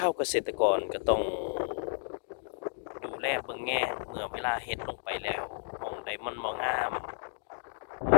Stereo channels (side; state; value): right; silent; digital silence